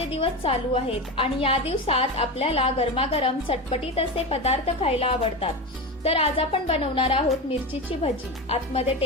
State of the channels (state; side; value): normal; both; correlation 0.21